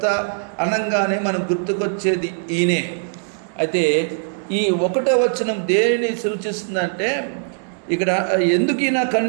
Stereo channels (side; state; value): left; silent; 65 dB below the other